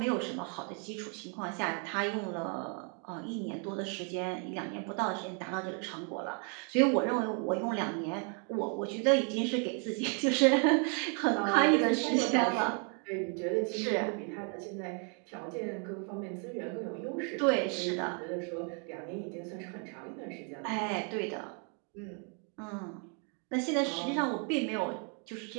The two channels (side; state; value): left; quieter; 39.6 dB